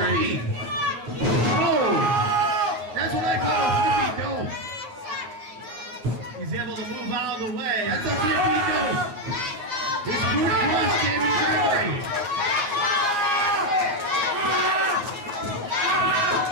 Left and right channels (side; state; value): left; late; 9.8 ms